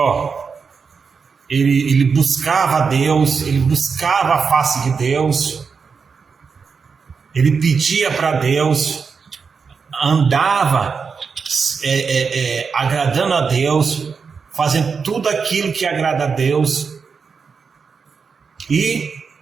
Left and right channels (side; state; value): left; quieter; 5.5 dB